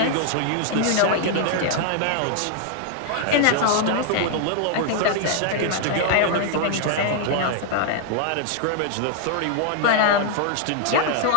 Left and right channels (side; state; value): both; different; correlation 0.00